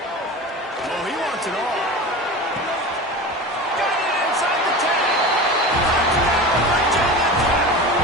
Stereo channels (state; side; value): normal; both; correlation 0.31